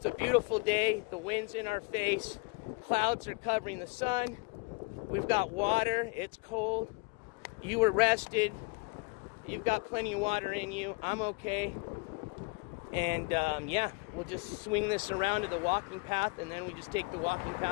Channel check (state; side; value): quieter; right; 29.9 dB